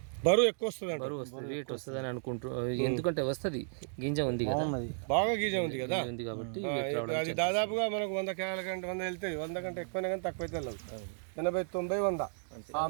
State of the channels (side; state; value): left; silent; digital silence